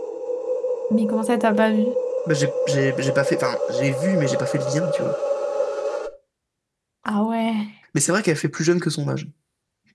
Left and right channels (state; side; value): identical; both; correlation 1.00